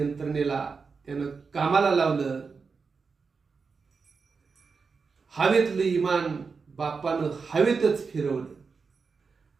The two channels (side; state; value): left; quieter; 5.0 dB